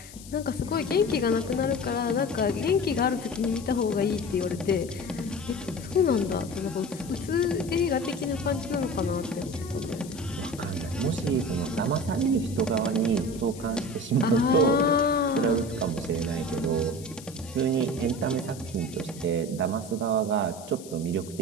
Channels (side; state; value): left; noise; hiss, 17 dB below the sound